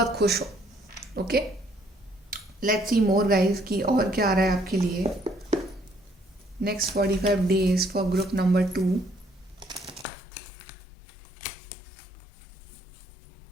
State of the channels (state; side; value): drops out; right; at 10.1 s